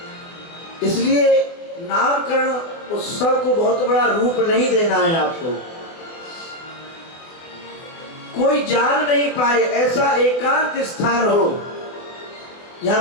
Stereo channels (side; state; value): right; late; 24 ms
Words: इसलिए नामकरण उत्सव को बहुत बड़ा रूप नहीं देना है आपको। कोई जान नहीं पाए ऐसा एकांत स्थान हो,